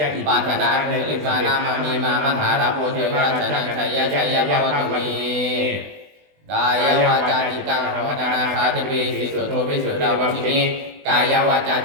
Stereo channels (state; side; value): late; left; 20 ms